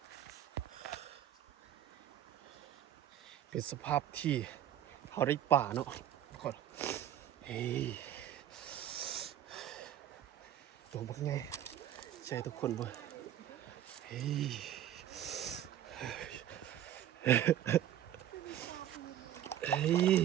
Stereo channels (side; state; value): left; quieter; 11.3 dB